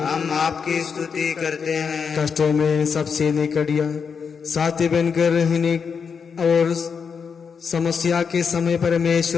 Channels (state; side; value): quieter; right; 6.2 dB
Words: आपकी स्तुति करते हैं। कष्टों में सबसे निकट या साथी बनकर रहने और समस्या के समय